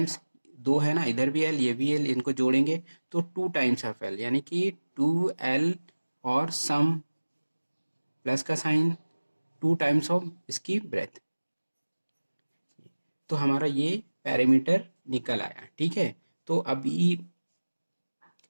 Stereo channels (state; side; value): inverted; both; correlation -1.00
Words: 2 है ना, इधर भी एल ये भी एल, इनको जोड़ेंगे तो 2 टाइम्स ऑफ एल, यानी कि 2 एल और सम प्लस का साइन 2 टाइम्स ऑफ इसकी ब्रेथ, तो हमारा ये पेरीमीटर निकल आया। ठीक है, तो अभी